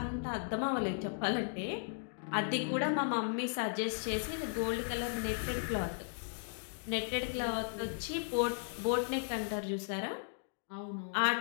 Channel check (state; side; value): silent; right; digital silence